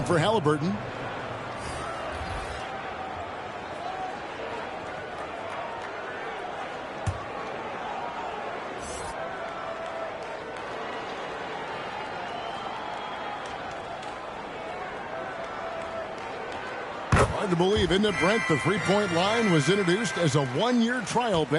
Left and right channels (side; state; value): both; identical; correlation 1.00